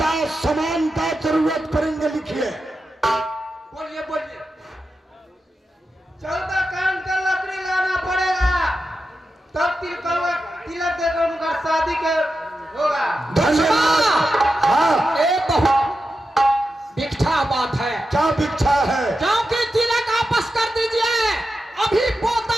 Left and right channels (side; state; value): both; normal; correlation 0.90